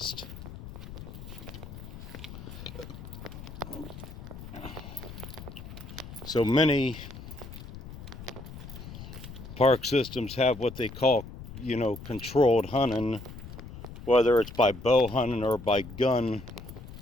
So many park systems have what they call, you know, controlled hunting, whether it's by bow hunting or by gun,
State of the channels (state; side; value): noise; left; rumble, 13 dB below the sound